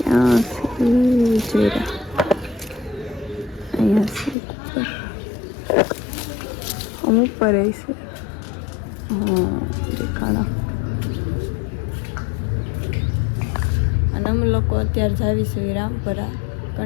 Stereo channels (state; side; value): drops out; right; at 4.4 s